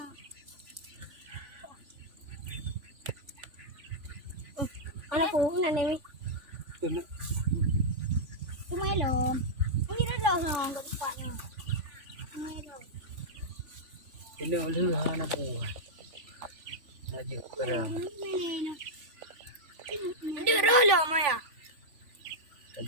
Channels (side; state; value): left; late; 3.4 ms